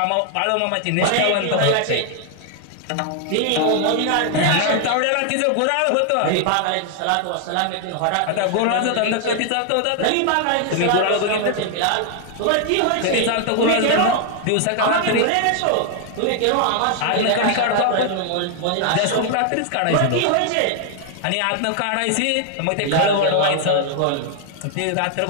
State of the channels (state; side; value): different; both; correlation 0.00